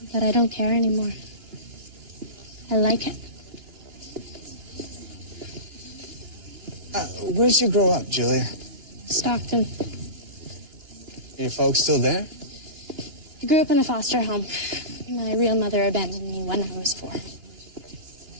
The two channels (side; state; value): left; late; 2.9 ms